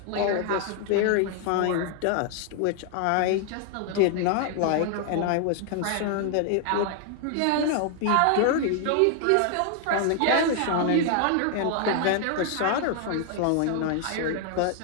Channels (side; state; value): both; different; correlation 0.00